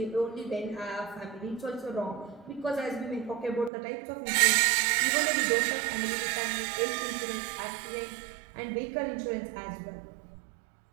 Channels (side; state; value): left; drops out; at 3.7 s